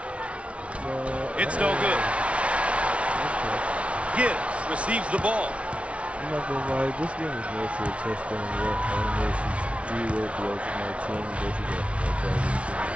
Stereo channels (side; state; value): left; late; 0.062 ms